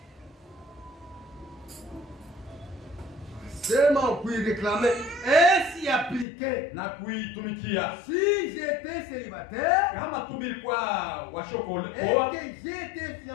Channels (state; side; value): drops out; right; at 6.2 s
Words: Seulement pour y réclamer et s'y appliquer. Na kuitumikia. Si j'étais célibataire Kama tumilikuwa washokole et que j'étais